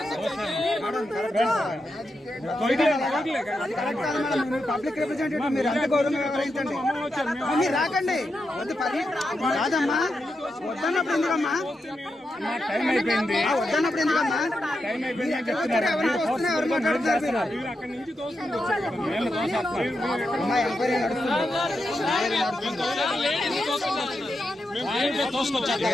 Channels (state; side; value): normal; both; correlation 0.86